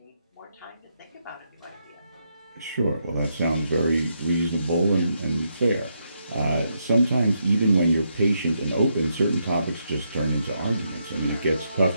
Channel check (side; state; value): both; inverted; correlation -0.80